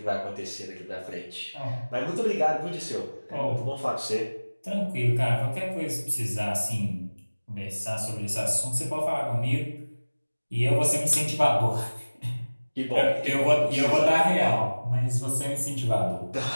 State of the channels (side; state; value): both; inverted; correlation -1.00